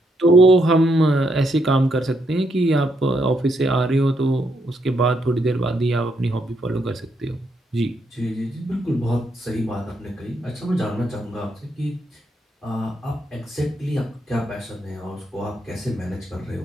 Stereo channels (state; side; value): normal; both; correlation 0.77